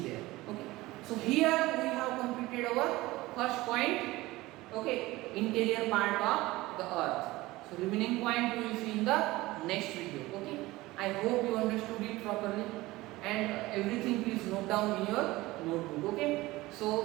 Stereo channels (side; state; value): left; quieter; 19.2 dB